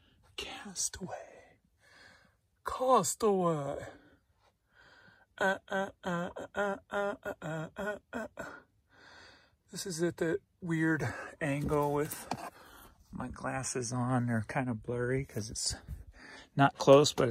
Castaway. Castaway. This is at that weird angle with my glasses on. They're kind of blurry because it's not close, but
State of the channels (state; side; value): identical; both; correlation 1.00